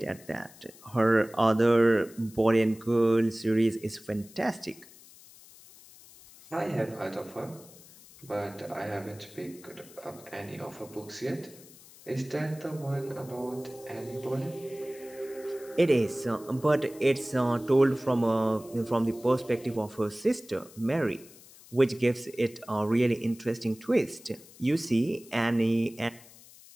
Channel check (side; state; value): left; noise; hiss, 22 dB below the sound